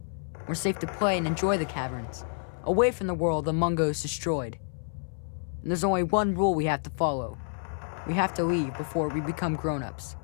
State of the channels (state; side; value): silent; right; 58 dB below the other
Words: we're safe to play and enjoy the caverns, away from the world the Mungos destroyed. And there's only one rule we have to follow. We have to leave before we become grown-ups.